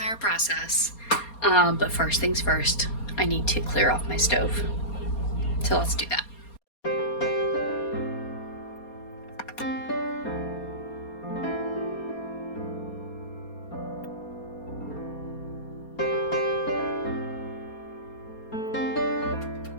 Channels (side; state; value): right; late; 4.3 ms